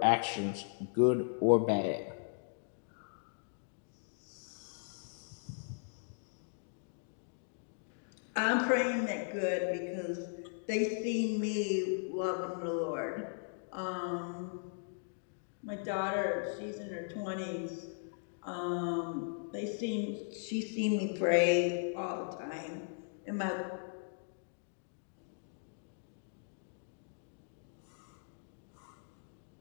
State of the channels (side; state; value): right; silent; digital silence